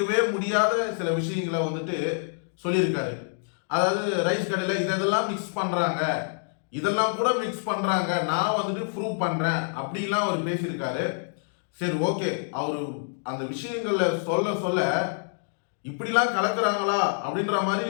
முடியாத சில விஷயங்களை வந்துட்டு சொல்லியிருக்காரு. அதாவது ரைஸ் கடையில் இதெல்லாம் மிக்ஸ் பண்ணுறாங்க, இதெல்லாம் கூட மிக்ஸ் பண்ணுறாங்க, நான் வந்துட்டு ப்ரூவ் பண்ணுறேன் அப்படிலாம் அவர் பேசியிருக்காரு. சரி, ஓகே, அவர் அந்த விஷயங்களை சொல்ல சொல்ல இப்படிலாம் கலக்குறாங்களா அப்படின்ற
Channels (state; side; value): silent; right; digital silence